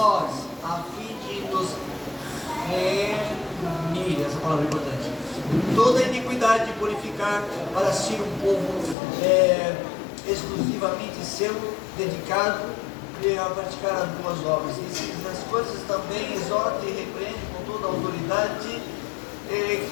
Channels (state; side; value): drops out; right; at 9.0 s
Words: a fim de nos remir, essa palavra é importante, toda iniquidade, purificar para si um povo exclusivamente seu, dedicado a praticar as boas obras. E as coisas também exorta e repreende com toda a autoridade,